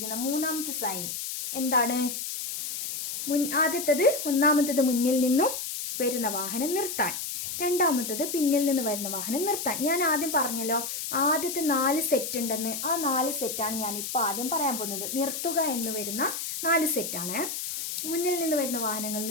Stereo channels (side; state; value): left; noise; hiss, 5 dB below the sound